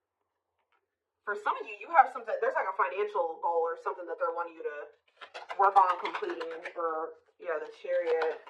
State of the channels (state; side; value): identical; both; correlation 1.00